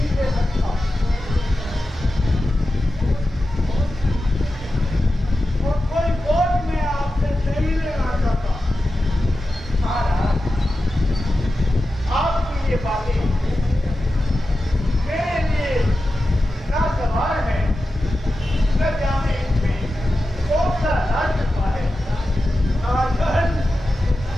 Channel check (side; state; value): both; normal; correlation 0.92